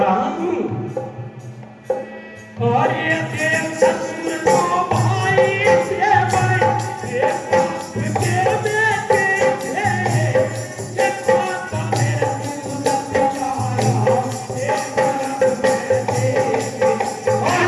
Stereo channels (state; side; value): identical; both; correlation 1.00